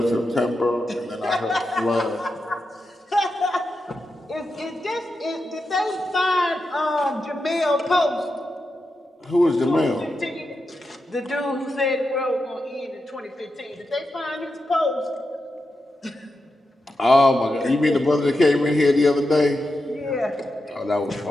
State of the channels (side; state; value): both; normal; correlation 0.88